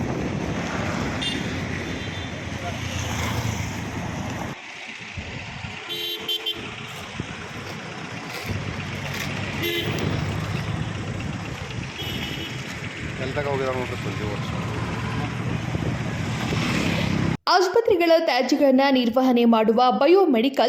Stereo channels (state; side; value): identical; both; correlation 1.00